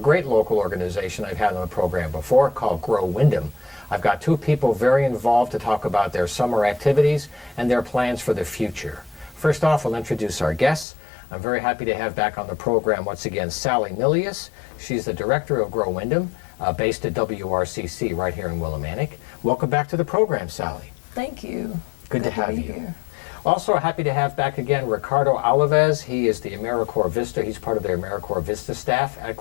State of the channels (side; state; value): right; drops out; at 10.9 s